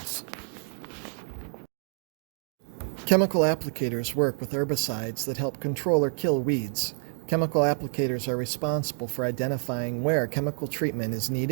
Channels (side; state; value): left; silent; 58 dB below the other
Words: Chemical applicators work with herbicides that help control or kill weeds. Chemical applicators are responsible for identifying where chemical treatment is